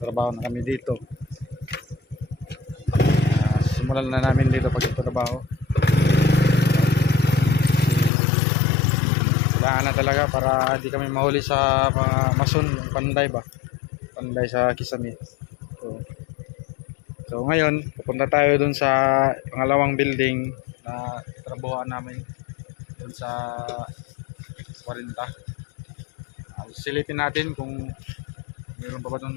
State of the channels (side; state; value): right; drops out; at 8.1 s